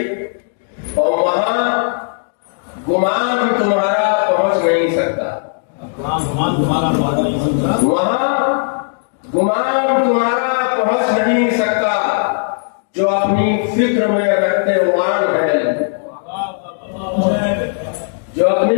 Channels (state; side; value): silent; right; digital silence